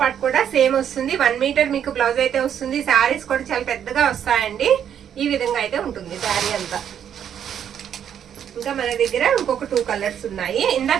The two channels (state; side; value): quieter; left; 9.1 dB